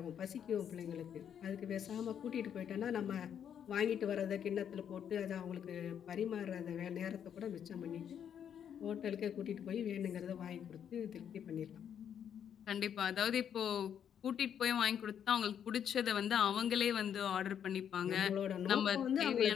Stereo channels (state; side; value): quieter; right; 8.8 dB